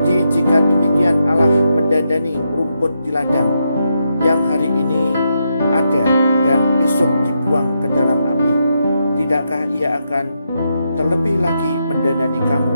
jika demikian Allah mendandani rumput di ladang yang hari ini ada dan besok dibuang ke dalam api, tidakkah ia akan terlebih lagi mendandani kamu,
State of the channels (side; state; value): both; inverted; correlation -0.82